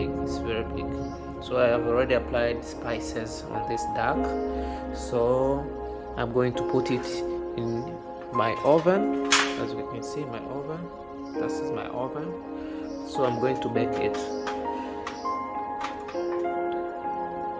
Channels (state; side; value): identical; both; correlation 1.00